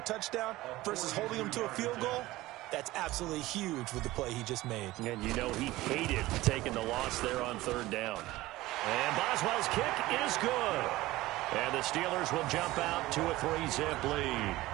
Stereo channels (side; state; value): left; quieter; 17.9 dB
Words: touchdown versus holding him to a field goal, that's absolutely huge with the play he just made. And you know he hated taking the loss there on third down. And Boswell's kick is good. And the Steelers will jump out to a 3-zip lead.